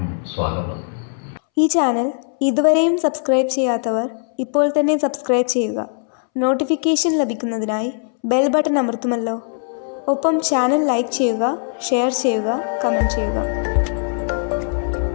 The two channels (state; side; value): silent; right; 66 dB below the other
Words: സ്വാഗതം. ഈ ചാനൽ ഇതുവരെയും സബ്സ്ക്രൈബ് ചെയ്യാത്തവർ ഇപ്പോൾ തന്നെ സബ്സ്ക്രൈബ് ചെയ്യുക. നോട്ടിഫിക്കേഷൻ ലഭിക്കുന്നതിനായി ബെൽ ബട്ടൺ അമർത്തുമല്ലോ. ഒപ്പം ചാനൽ ലൈക്ക് ചെയ്യുക, ഷെയർ ചെയ്യുക, കമൻറ്റ് ചെയ്യുക.